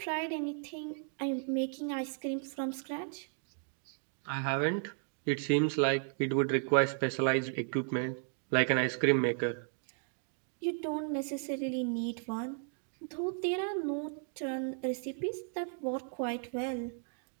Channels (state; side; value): silent; left; 55 dB below the other